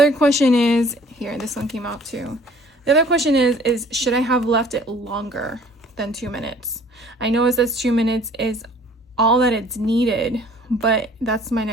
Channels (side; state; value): both; normal; correlation 0.53